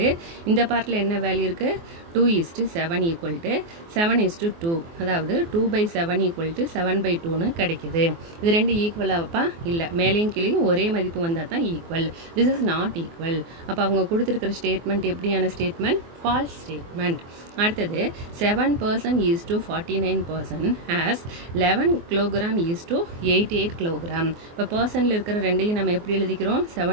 இந்த பார்ட்டில் என்ன வேல்யூ இருக்குது 2:7 ஈக்குவல் டு 7:2 அதாவது 2/7 ஈக்குவல் டு 7/2ன்னு கிடைக்குது. இது ரெண்டு ஈக்குவலாகப்பா இல்லை மேலேயும் கீழேயும் ஒரே மதிப்பு வந்தால் தான் equal. This is not equal. அப்போ அவங்க கொடுத்துருக்கிற ஸ்டேட்மெண்ட் எப்படியான ஸ்டேட்மெண்ட் ஃபால்ஸ் ஸ்டேட்மெண்ட். அடுத்தது 7% is to 49% as 11 kilogram is to 88 kilogram. இப்போ பர்சனில் இருக்கிற ரெண்டையும் நம்ம எப்படி எழுதிக்கிறோம்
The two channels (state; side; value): late; left; 24 ms